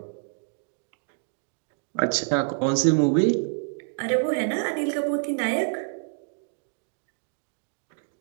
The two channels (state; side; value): silent; left; digital silence